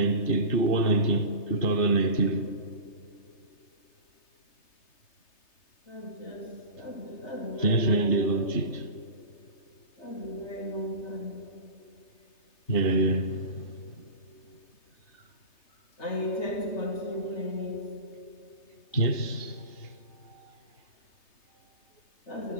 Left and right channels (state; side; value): late; right; 3.3 ms